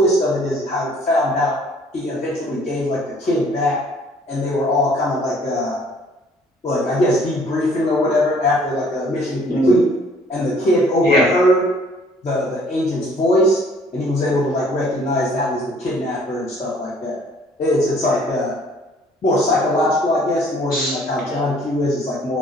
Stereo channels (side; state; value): both; normal; correlation 0.58